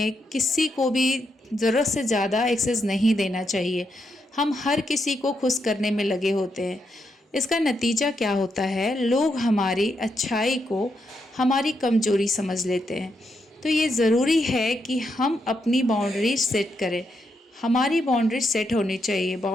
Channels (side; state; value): both; normal; correlation 0.81